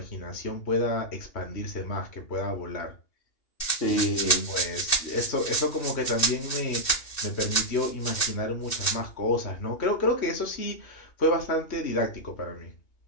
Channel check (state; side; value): late; right; 2.6 ms